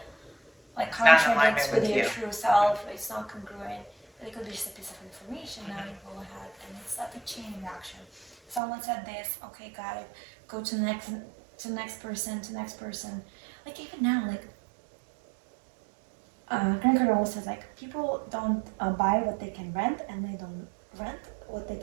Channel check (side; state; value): left; drops out; at 8.6 s